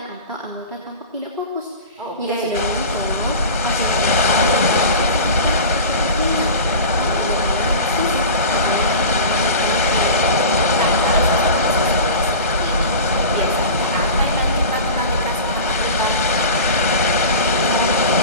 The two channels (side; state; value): both; inverted; correlation -0.33